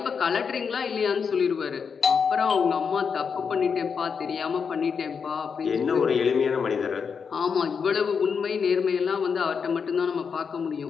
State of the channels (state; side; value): quieter; right; 6.1 dB